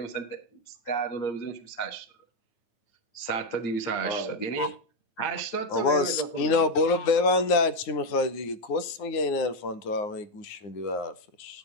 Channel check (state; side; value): late; right; 9.7 ms